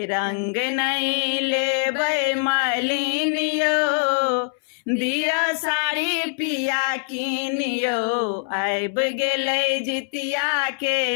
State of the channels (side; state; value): right; silent; 63 dB below the other